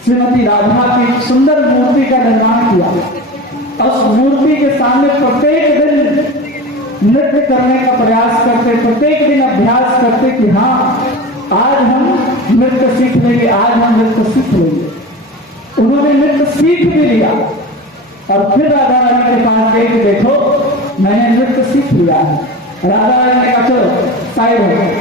श्रीमती राधा की सुंदर मूर्ति का निर्माण किया। उस मूर्ति के सामने प्रत्येक दिन नृत्य करने का प्रयास करते, प्रत्येक दिन अभ्यास करते कि हाँ आज हम नृत्य सीख लेंगे, आज हम नृत्य सीख लेंगे। उन्होंने नृत्य सीख भी लिया, और फिर राधा रानी के पास गए कि देखो मैंने नृत्य सीख लिया है। राधा रानी ने कहा चलो साइड हो,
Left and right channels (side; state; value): both; normal; correlation 0.31